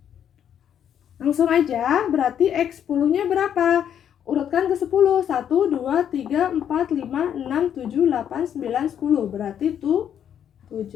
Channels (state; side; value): quieter; right; 9.2 dB